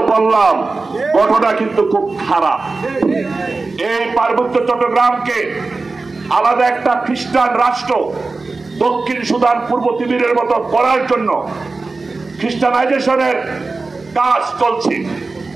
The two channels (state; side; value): quieter; left; 3.7 dB